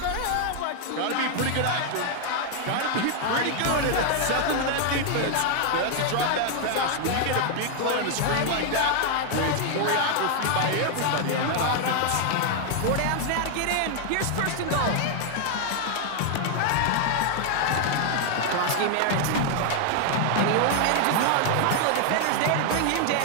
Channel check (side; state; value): both; different; correlation 0.00